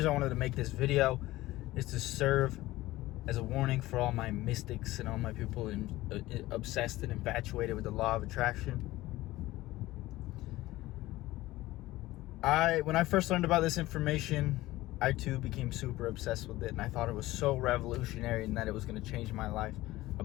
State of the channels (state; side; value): quieter; right; 17.5 dB